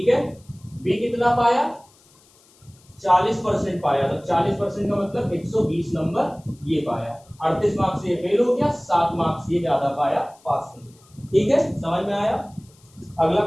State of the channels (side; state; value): left; noise; hiss, 30 dB below the sound